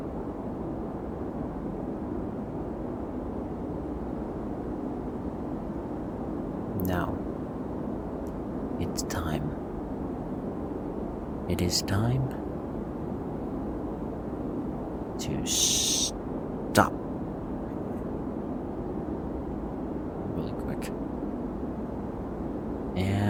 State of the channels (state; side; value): identical; both; correlation 1.00